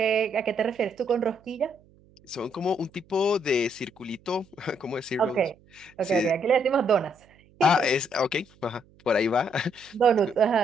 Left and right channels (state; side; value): noise; right; hum, 29 dB below the sound